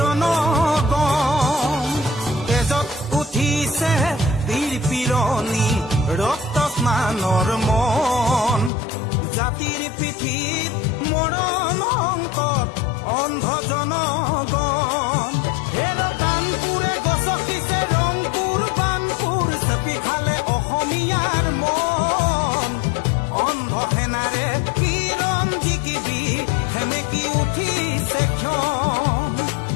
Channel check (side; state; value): right; drops out; at 8.7 s